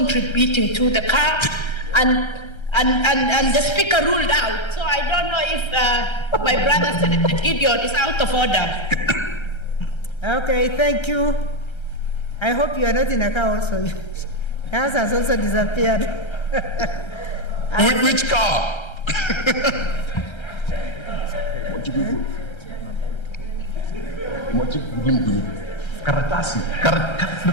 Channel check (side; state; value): right; late; 1.3 ms